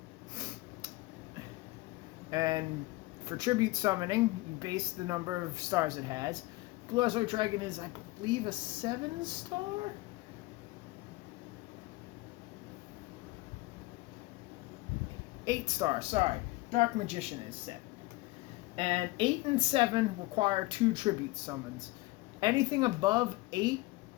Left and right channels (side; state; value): right; quieter; 21.0 dB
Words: And for tribute summoning, you base the number of stars it has. Blue Eyes White Dragon is, I believe, a 7-star? Eight star, sorry. Dark Magician is 7. And 8 and 7 require 2 tribute summons. Anything above 8